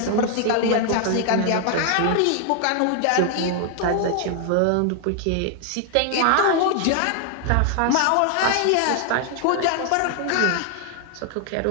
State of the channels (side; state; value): both; different; correlation 0.00